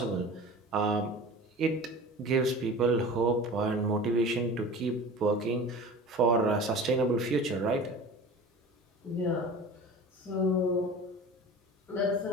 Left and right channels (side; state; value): both; normal; correlation 0.37